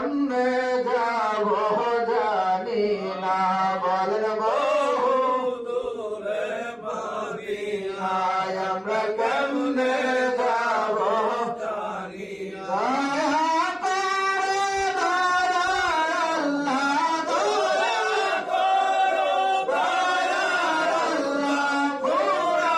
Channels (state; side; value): identical; both; correlation 1.00